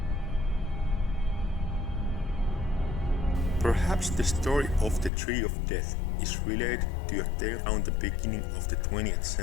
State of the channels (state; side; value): drops out; right; at 5.1 s